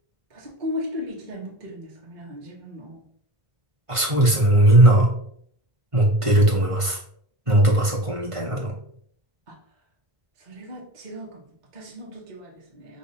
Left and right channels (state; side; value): late; left; 1.5 ms